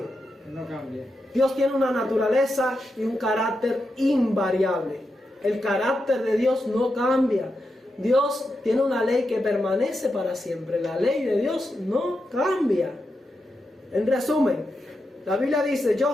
No cambia. Dios tiene una naturaleza y un carácter invariable. El carácter de Dios no cambia. Dios tiene una ley que permanece para siempre. La ley de Dios no cambia. En resumen, la Biblia dice:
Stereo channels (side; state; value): both; normal; correlation 0.87